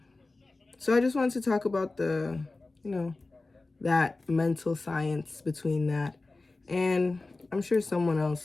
I just wanted to talk about that mental science between that, and I'm sure someone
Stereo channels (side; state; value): right; quieter; 3.3 dB